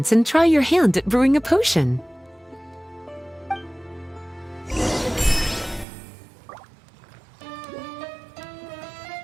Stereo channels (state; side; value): drops out; left; at 5.9 s